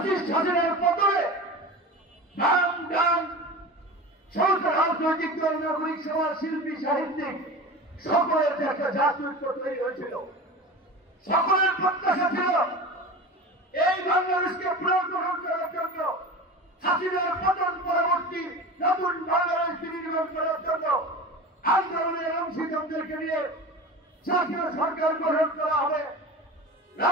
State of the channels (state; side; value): normal; both; correlation 0.32